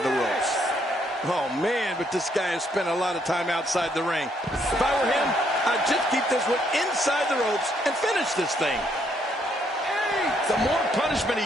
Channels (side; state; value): both; normal; correlation 0.71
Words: the ropes. Oh, man, but this guy has spent a lot of time outside the ring. If I were him, I'd just keep this one inside the ropes and finish this thing. The more punishment he